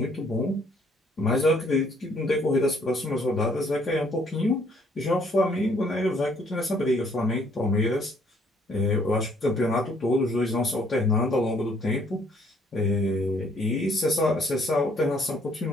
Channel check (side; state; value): both; normal; correlation 0.64